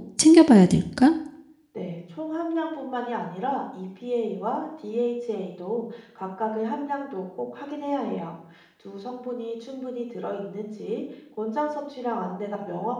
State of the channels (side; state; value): both; identical; correlation 1.00